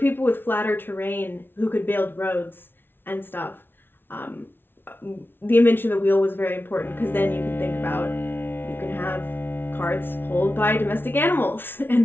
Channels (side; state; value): right; late; 0.10 ms